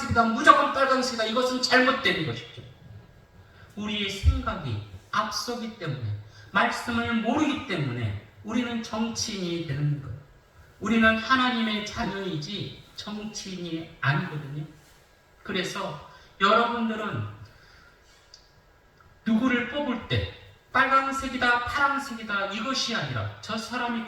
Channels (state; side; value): identical; both; correlation 1.00